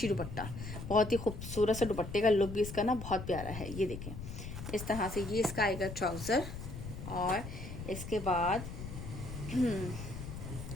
दुपट्टा, बहुत ही खूबसूरत सा दुपट्टे का लुक भी इसका ना बहुत प्यारा है। ये देखें इस तरह से, ये इसका आएगा ट्राउज़र, और इसके बाद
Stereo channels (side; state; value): left; noise; rumble, 9 dB below the sound